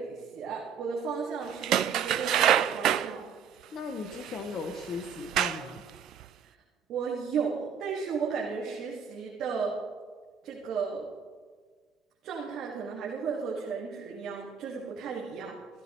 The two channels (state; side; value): quieter; left; 6.8 dB